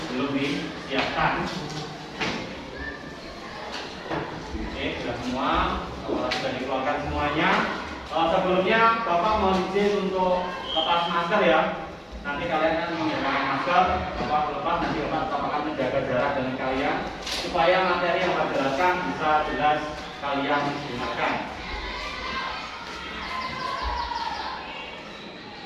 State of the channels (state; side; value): identical; both; correlation 1.00